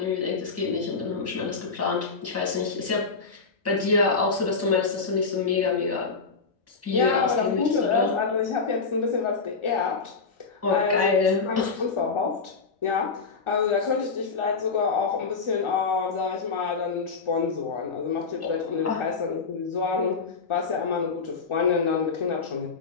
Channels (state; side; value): quieter; right; 4.7 dB